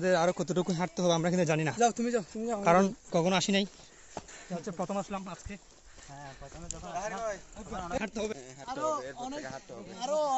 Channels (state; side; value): identical; both; correlation 1.00